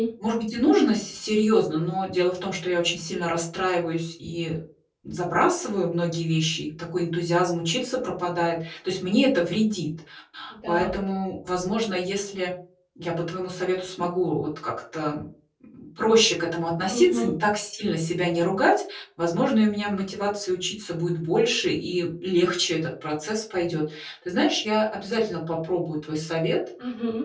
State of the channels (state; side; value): identical; both; correlation 1.00